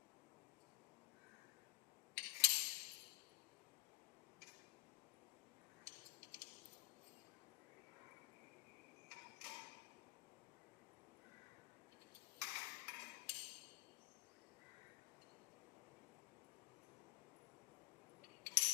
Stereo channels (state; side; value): quieter; right; 20.7 dB